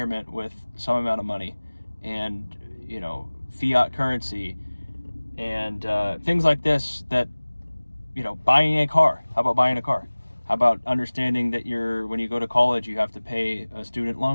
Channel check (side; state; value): both; inverted; correlation -1.00